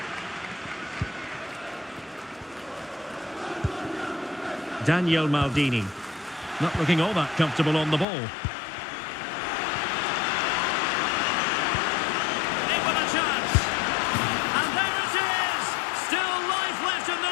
Daniel Maldini. Not looking all that comfortable on the ball.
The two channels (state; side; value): drops out; right; at 8.1 s